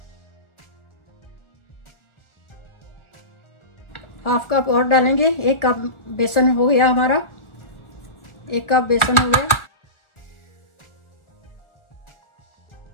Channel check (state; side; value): late; right; 1.4 ms